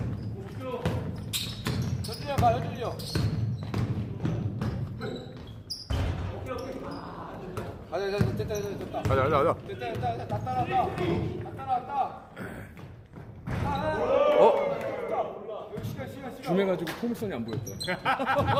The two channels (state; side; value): identical; both; correlation 1.00